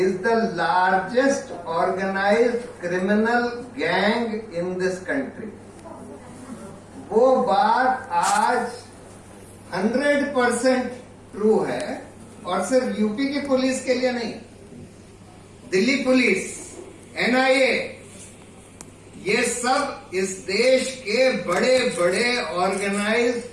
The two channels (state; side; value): identical; both; correlation 1.00